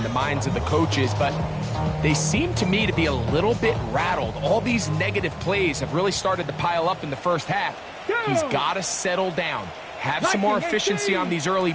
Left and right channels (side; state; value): both; identical; correlation 1.00